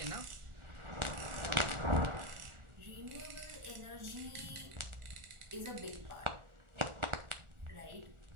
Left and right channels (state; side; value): late; left; 1.4 ms